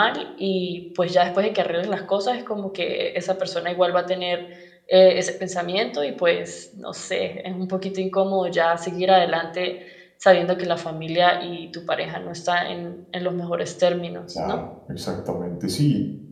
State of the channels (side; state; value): both; identical; correlation 1.00